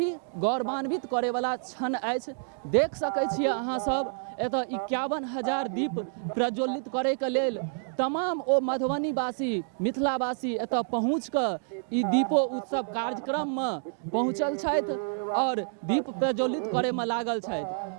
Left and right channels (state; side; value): silent; left; digital silence